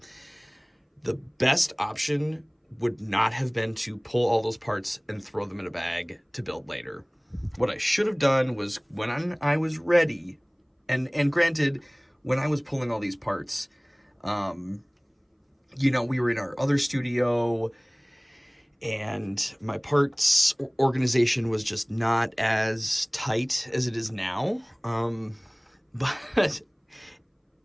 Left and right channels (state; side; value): identical; both; correlation 1.00